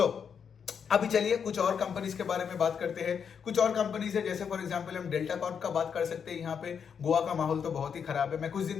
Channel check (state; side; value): quieter; right; 7.0 dB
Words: अभी चलिए कुछ और कंपनीज के बारे में बात करते हैं। कुछ और कंपनीज है, जैसे फॉर एग्जांपल हम डेल्टा कॉर्प का बात कर सकते हैं। यहाँ पे गोवा का माहौल तो बहुत ही खराब है। मैं कुछ